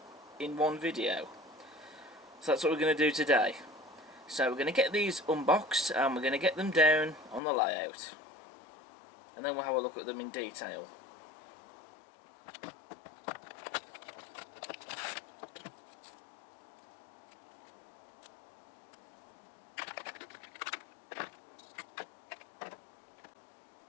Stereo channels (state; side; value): drops out; right; at 7.4 s